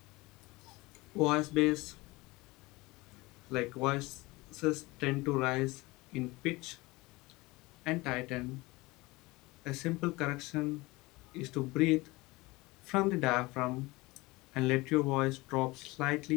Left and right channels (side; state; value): right; quieter; 22.2 dB